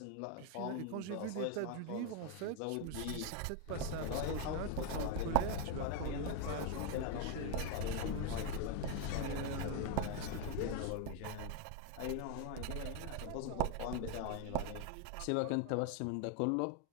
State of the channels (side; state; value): both; different; correlation 0.01